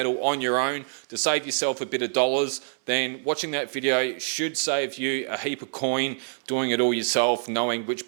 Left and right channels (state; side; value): silent; left; 61 dB below the other